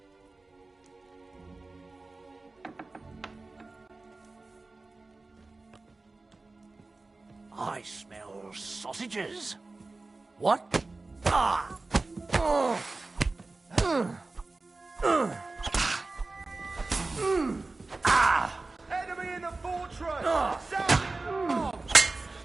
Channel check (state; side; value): quieter; left; 3.4 dB